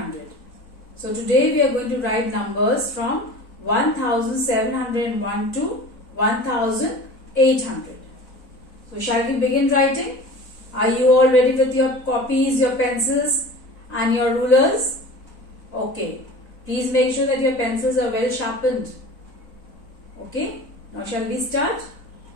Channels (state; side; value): late; right; 4.0 ms